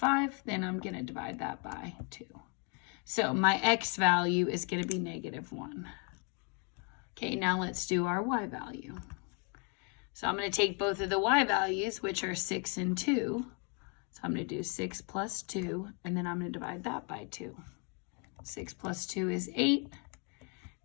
then I'm going to divide that by 2. So my x value is going to be -1. Okay, now let's do our y value. So I'm going to take both of the y values, which are 6 and 2. So I'm going to do 6 plus 2, and then I'm going to divide that by 2. 6 plus 2 is 8.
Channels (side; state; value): right; quieter; 36.6 dB